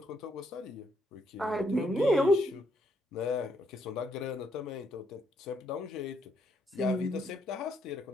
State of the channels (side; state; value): both; normal; correlation 0.74